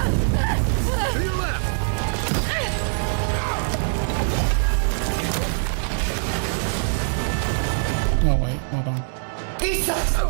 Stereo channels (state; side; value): silent; left; digital silence